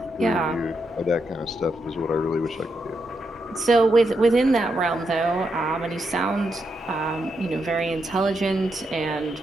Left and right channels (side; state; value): both; normal; correlation 0.82